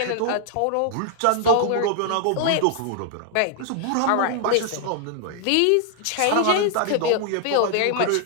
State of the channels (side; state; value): both; different; correlation 0.00